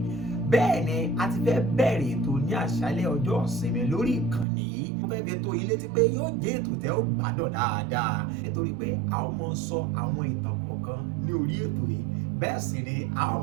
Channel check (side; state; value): left; drops out; at 4.5 s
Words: Bẹ́ẹ̀ ni a ti fẹ́ bẹ̀rẹ̀ ètò ní àṣálẹ́ ọjọ́ ìsinmi lórí ìkànnì yìí. Mo fẹ́ fi tó yín létí pé yóò jẹ́ ètò tẹ́ ó gbádùn dáadáa, nítorí pé a ó máa sọ àwọn ìtàn kọ̀ọ̀kan ní orí ètò yìí. Bẹ́ẹ̀ sì ni a ó